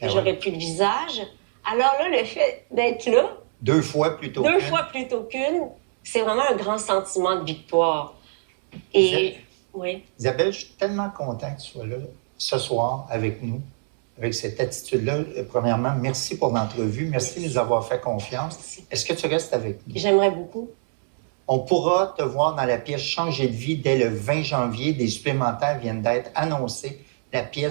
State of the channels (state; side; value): silent; left; 63 dB below the other